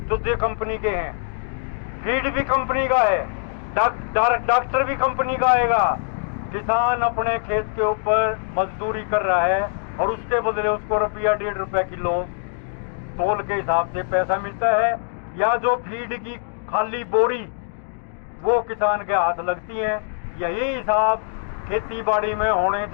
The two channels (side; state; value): right; silent; digital silence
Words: दूसरी कंपनी के हैं, फीड भी कंपनी का है, डॉक्टर भी कंपनी का आएगा। किसान अपने खेत के ऊपर मजदूरी कर रहा है और उसके बदले उसको रुपया 1.5 रुपया किलो तोल के हिसाब से पैसा मिलता है, या जो फीड की खाली बोरी वो किसान के हाथ लगती है। यही हिसाब खेती बाड़ी में होने